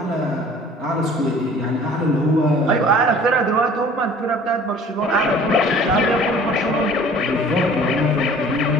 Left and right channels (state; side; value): normal; both; correlation 0.49